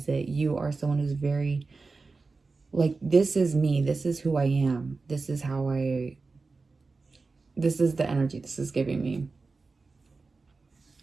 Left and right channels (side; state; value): left; quieter; 4.0 dB